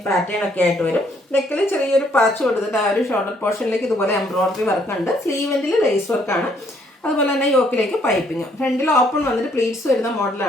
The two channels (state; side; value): normal; both; correlation 0.67